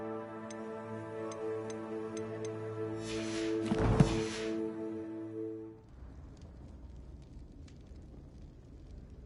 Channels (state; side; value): identical; both; correlation 1.00